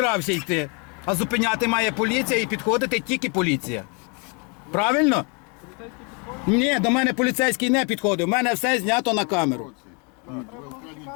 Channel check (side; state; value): right; quieter; 34.4 dB